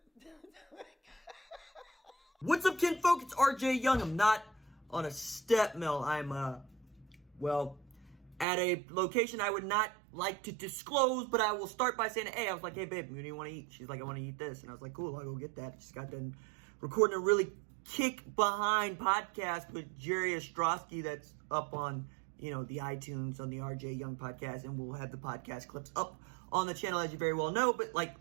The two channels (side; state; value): left; drops out; at 8.5 s